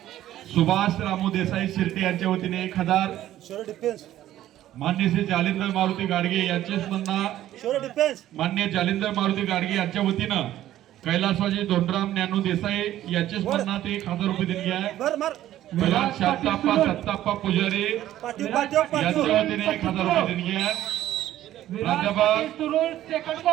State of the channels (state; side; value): quieter; left; 13.2 dB